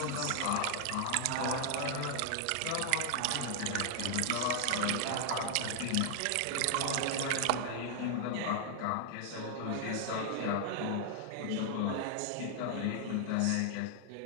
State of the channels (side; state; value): both; different; correlation 0.00